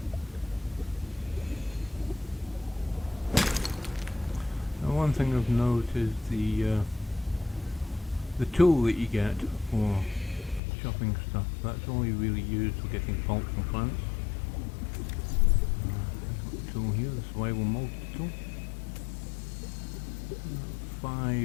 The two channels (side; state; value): right; drops out; at 10.6 s